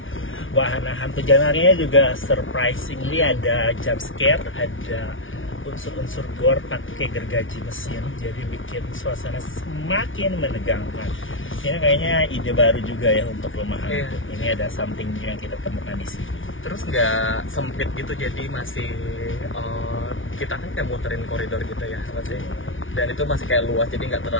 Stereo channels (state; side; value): late; right; 0.57 ms